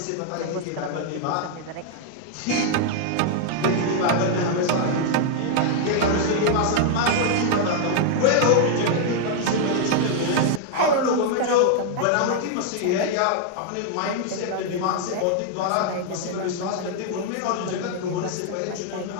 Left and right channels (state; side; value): different; both; correlation 0.00